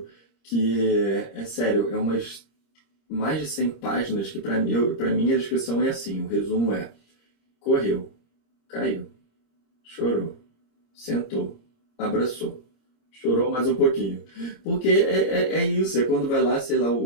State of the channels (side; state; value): right; late; 26 ms